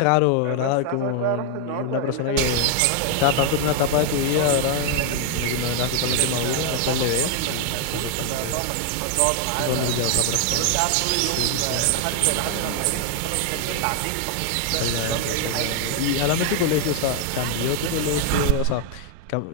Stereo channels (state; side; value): different; both; correlation 0.00